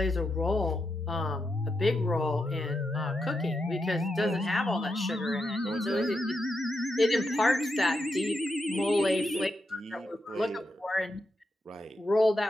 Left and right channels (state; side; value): normal; both; correlation 0.85